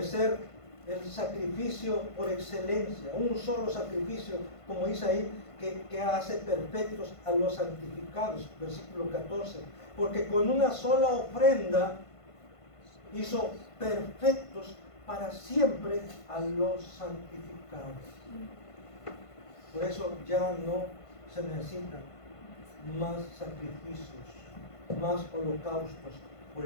el sacrificio por excelencia, un solo sacrificio, como dice ahí, que hace perfectos a los santificados, versículo 14, porque con una sola ofrenda hizo perfectos para siempre a los santificados. Por eso ya no se necesitan más sacrificios, más holocaustos por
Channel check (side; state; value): right; late; 1.5 ms